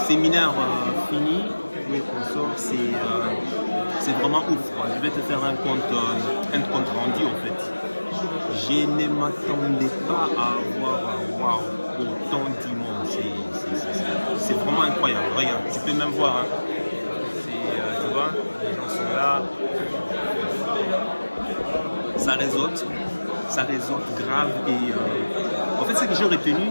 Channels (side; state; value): both; inverted; correlation -1.00